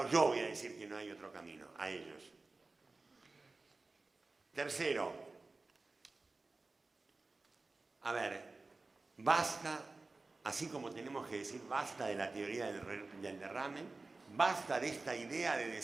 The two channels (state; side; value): quieter; left; 3.5 dB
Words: yo voy a decir que no hay otro camino, a ellos. Tercero, a ver, basta, así como tenemos que decir basta de la teoría del derrame, basta de esta idea de